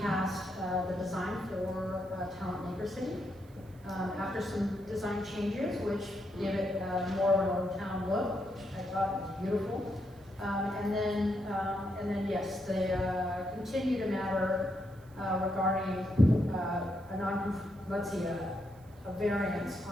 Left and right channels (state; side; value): noise; right; hiss, 29 dB below the sound